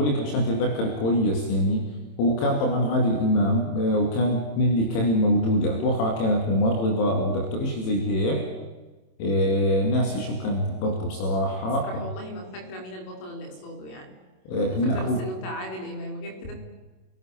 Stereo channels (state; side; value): late; right; 27 ms